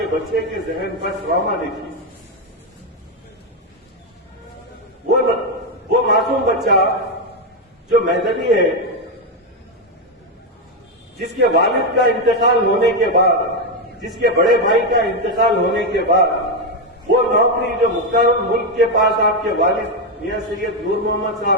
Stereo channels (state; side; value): normal; both; correlation 0.06